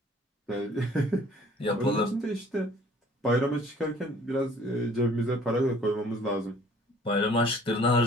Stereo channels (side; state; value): both; normal; correlation 0.54